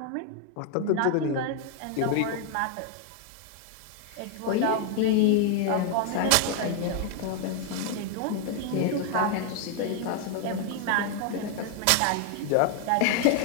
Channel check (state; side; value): different; both; correlation 0.00